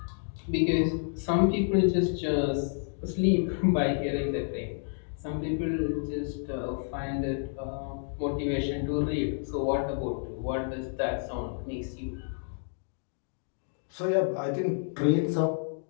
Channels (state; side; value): silent; right; digital silence